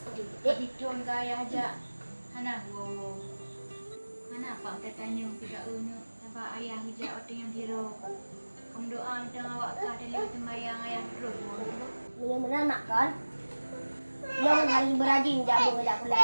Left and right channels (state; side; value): inverted; both; correlation -1.00